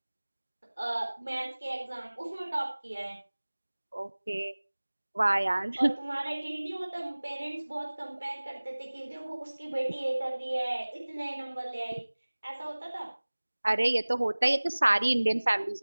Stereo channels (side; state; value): both; inverted; correlation -1.00